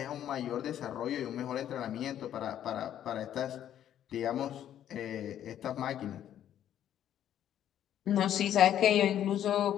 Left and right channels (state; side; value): quieter; right; 10.8 dB